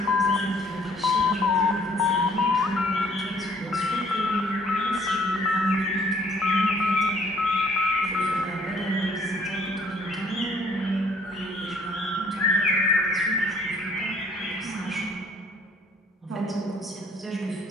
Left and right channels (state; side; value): normal; both; correlation 0.60